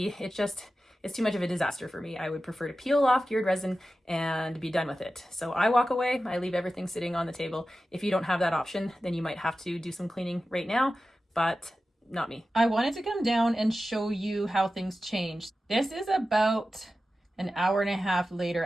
it's too much of a disaster for me. I would prefer to peel off cured resin and be done with it. So I walk away, I leave everything sitting on the table. If you don't have that option, then you might have to do some cleaning right now, but not me. I wanted to come down and show you how things changed. This is about an hour and a half later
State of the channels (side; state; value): both; normal; correlation 0.93